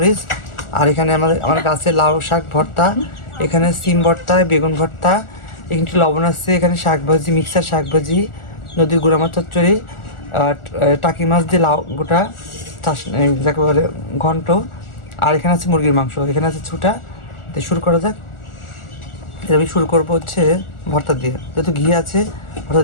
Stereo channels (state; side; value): late; right; 1.4 ms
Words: আর এখানে আমার গাছের লাউ শাক ভর্তা, এখানে সিম ভর্তা, বেগুন ভর্তা, এখানে একটু লবণ আছে, এখানে শাক ভাজি, মিক্সার শাক ভাজি, নদীর গুঁড়া মাছ চচ্চড়ি, টাকি মাছ দিয়ে লাউ গোটা চাষ যাকে বলে ঘন্ট, আর এখানে আছে মুরগির মাংস, এখানে আছে ছুটা। তো শুরু করা যাক। আমি শুরু করবো হচ্ছে ভর্তা দিয়ে, যেহেতু ঘি আছে ভর্তা